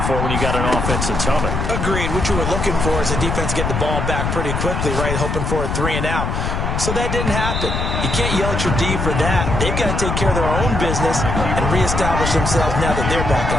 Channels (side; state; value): left; noise; rumble, 1 dB below the sound